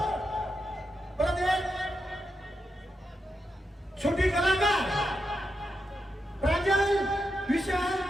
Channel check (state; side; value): normal; both; correlation 0.86